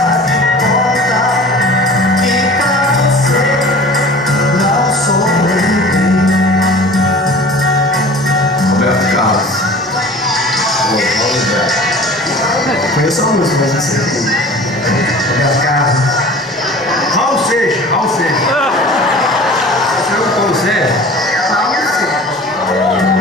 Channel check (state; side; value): normal; both; correlation 0.42